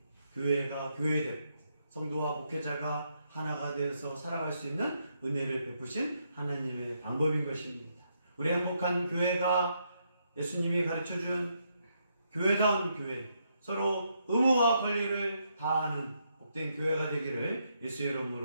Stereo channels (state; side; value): inverted; both; correlation -0.78